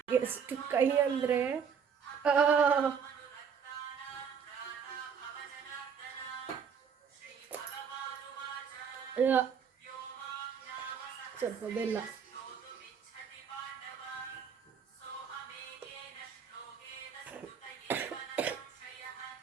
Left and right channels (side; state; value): left; quieter; 6.9 dB